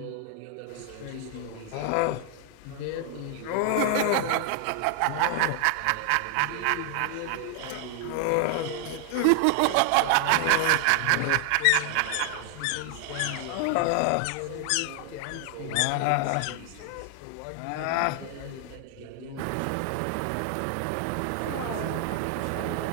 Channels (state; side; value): different; both; correlation 0.00